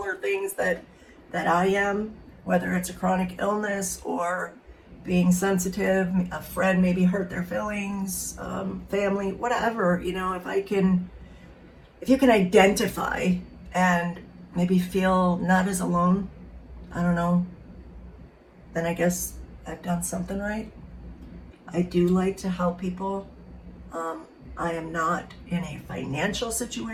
things that I am, whether it's a chronic illness or being sensitive, a friend maybe hurt their feelings, family, whatever, you know, if you can identify and maybe feel not as alone, I don't know, then I guess I've done something right. I do like to help people. I am not in a financial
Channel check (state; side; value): identical; both; correlation 1.00